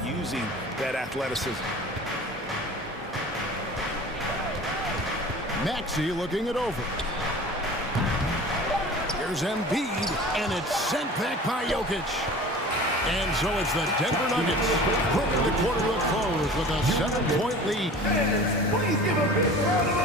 using that athleticism. Maxey looking it over. Here's Embiid, and it's sent back by Jokic. And so it's the Denver Nuggets bringing the quarter to a close with a 7-point lead. Please give a big round of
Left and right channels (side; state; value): both; normal; correlation 0.41